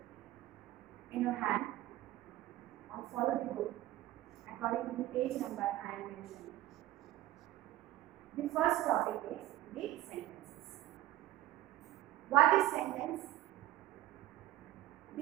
in your hand or follow the book according to the page number I am mentioning. The first topic is the sentences. What is sentence?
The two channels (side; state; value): left; quieter; 15.1 dB